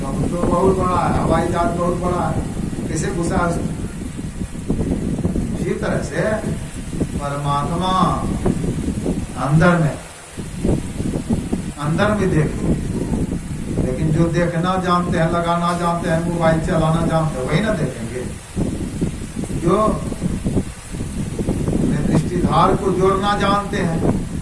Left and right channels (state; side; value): identical; both; correlation 1.00